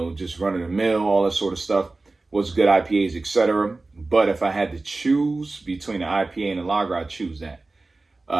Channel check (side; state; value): left; quieter; 3.3 dB